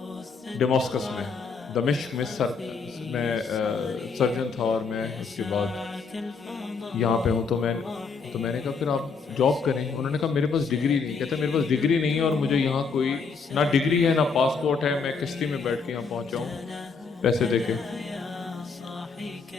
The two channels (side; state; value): right; quieter; 5.1 dB